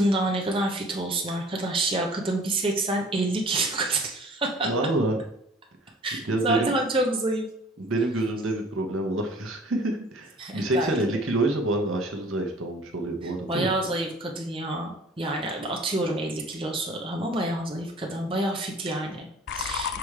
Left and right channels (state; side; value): normal; both; correlation 0.50